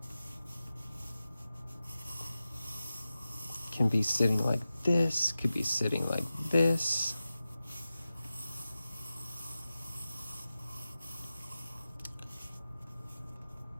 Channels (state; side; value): inverted; both; correlation -0.94